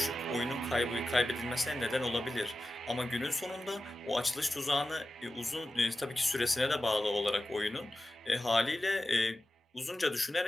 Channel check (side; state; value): both; normal; correlation 0.94